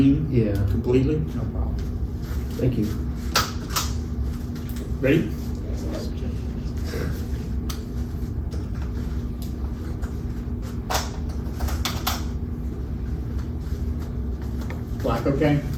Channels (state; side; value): identical; both; correlation 1.00